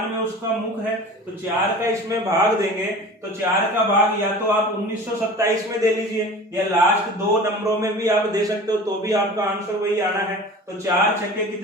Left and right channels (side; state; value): both; normal; correlation 0.39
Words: में उसका मुख है। तो 4 का इसमें भाग देंगे, तो 4 का भाग या तो आप 1927 में दे लीजिए या लास्ट 2 नंबरों में भी आप दे सकते हो, तो भी आपका आंसर वही आना है। तो 4 छक्के